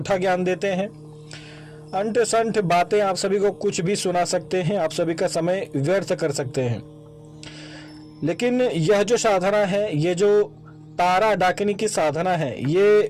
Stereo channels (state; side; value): identical; both; correlation 1.00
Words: ज्ञान देते हैं। अंठ संठ बातें आप सभी को कुछ भी सुना सकते हैं, आप सभी का समय व्यर्थ कर सकते हैं। लेकिन यह जो साधना है, ये जो तारा डाकिनी की साधना है, ये